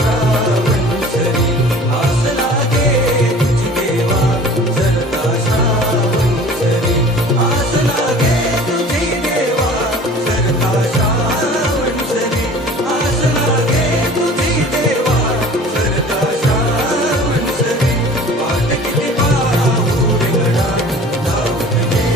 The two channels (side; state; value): both; normal; correlation 0.45